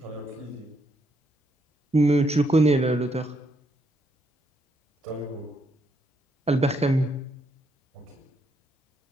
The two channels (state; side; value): normal; both; correlation 0.76